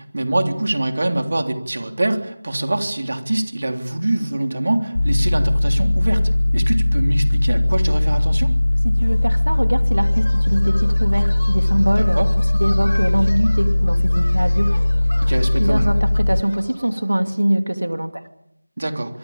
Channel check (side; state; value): both; inverted; correlation -0.99